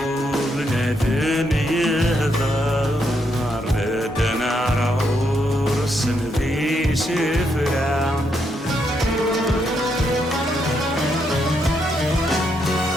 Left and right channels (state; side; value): normal; both; correlation 0.78